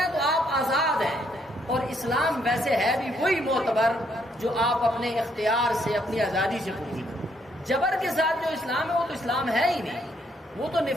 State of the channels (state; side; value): normal; both; correlation 0.72